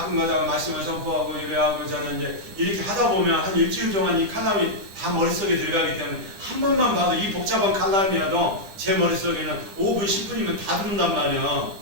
가다가 말씀을 선포하고 이래하고 저는 이제 이렇게 하다 보면 한 일주일 동안 이 칼럼이 다 머릿속에 들어가기 때문에 한 번만 봐도 이 복잡한 칼럼이라도 제 머릿속에는 5분, 10분이면 다 들어온단 말이야.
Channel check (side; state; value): left; late; 10 ms